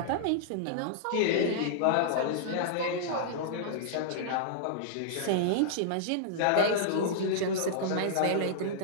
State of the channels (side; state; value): both; different; correlation -0.02